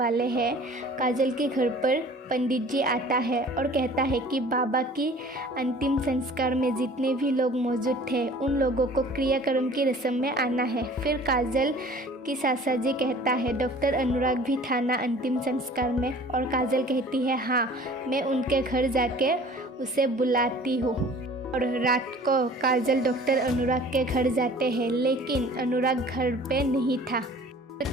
हैं काजल के घर पर पंडित जी आता है और कहता है कि बाबा की अंतिम संस्कार में जितने भी लोग मौजूद थे उन लोगों को क्रियाक्रम की रस्म में आना है। फिर काजल की सासा जी कहता है डॉक्टर अनुराग भी था ना अंतिम संस्कार में, और काजल कहती है हाँ, मैं उनके घर जाके उसे बुलाती हूँ। और रात को काजल डॉक्टर अनुराग के घर जाते हैं, लेकिन अनुराग घर पे नहीं था।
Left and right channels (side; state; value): both; normal; correlation 0.48